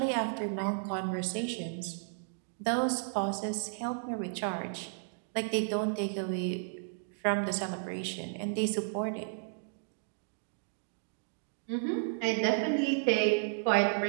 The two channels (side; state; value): left; silent; digital silence